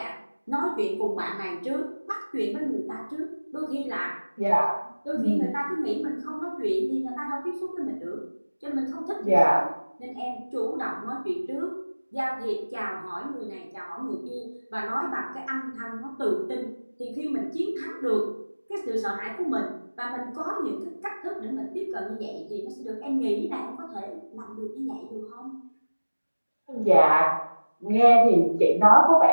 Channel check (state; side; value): inverted; both; correlation -1.00